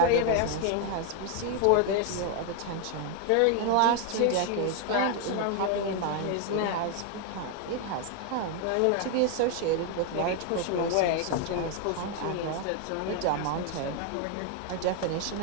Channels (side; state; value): both; different; correlation 0.01